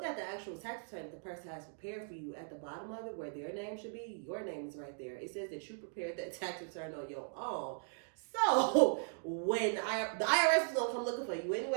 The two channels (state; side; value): silent; left; digital silence